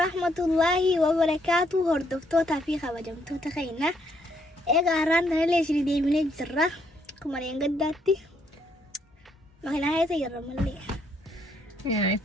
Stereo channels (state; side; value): normal; both; correlation 0.71